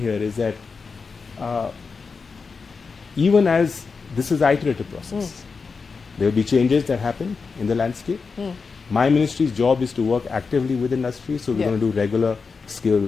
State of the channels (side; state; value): right; quieter; 4.9 dB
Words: here is that even as this is an iterative process, there will be changes that happen in the landscape. My ministry's job is to work actively with industry, so we're going to do regular